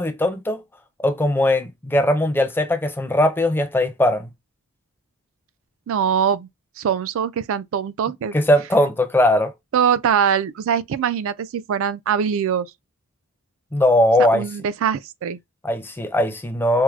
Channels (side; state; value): both; normal; correlation 0.47